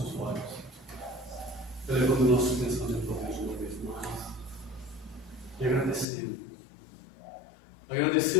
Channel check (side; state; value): right; drops out; at 6.1 s